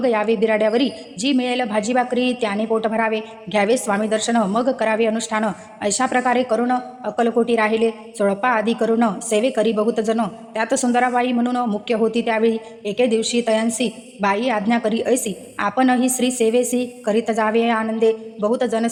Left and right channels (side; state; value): both; identical; correlation 1.00